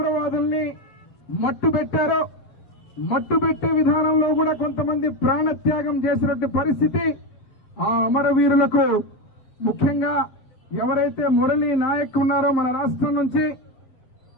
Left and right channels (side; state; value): right; late; 7.6 ms